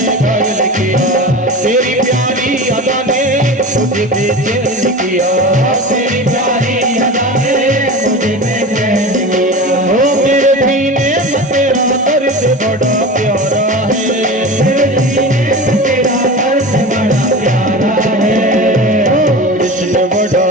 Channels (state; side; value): normal; both; correlation 0.31